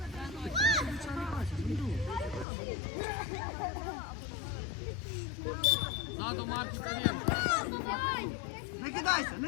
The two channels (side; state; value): right; drops out; at 2.5 s